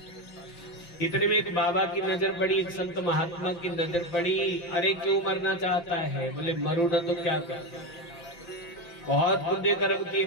इतने में एक बाबा की नजर पड़ी, एक संत महात्मा की नजर पड़ी। अरे क्यों मरना चाहता है? बोले मरू ना तो क्या कर, बहुत पुण्य कर्म किए,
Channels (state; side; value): late; right; 5.8 ms